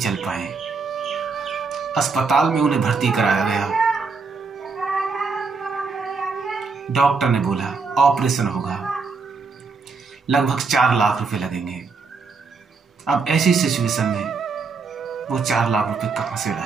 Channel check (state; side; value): quieter; left; 4.7 dB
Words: पाए। अस्पताल में उन्हें भर्ती कराया गया। डॉक्टर ने बोला ऑपरेशन होगा, लगभग 4 लाख रुपए लगेंगे। अब ऐसी सिचुएशन में वो 4 लाख रुपए कहां से